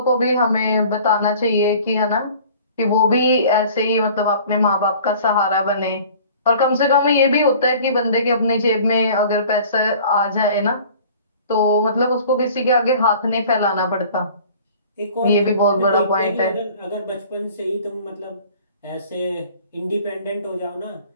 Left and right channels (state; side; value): inverted; both; correlation -0.48